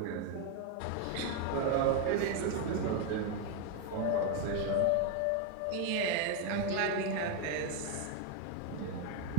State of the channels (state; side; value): different; both; correlation 0.01